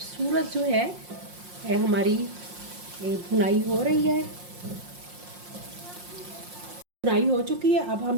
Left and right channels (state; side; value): late; left; 5.6 ms